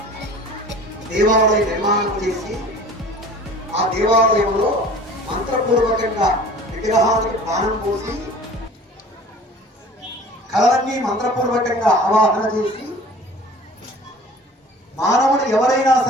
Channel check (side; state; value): both; normal; correlation 0.45